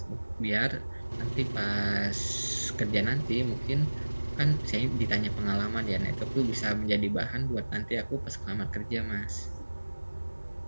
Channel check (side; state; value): both; inverted; correlation -1.00